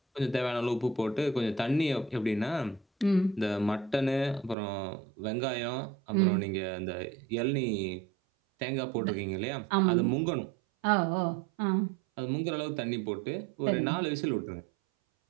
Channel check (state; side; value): drops out; left; at 4.5 s